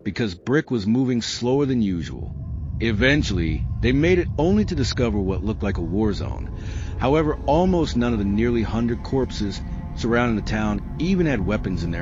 because Brick was moving slower than usual. Eventually, they made it only to discover what looked like a war zone. However, almost none of the nearly 100 corpses surrounding the town even had weapons in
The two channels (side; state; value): both; identical; correlation 1.00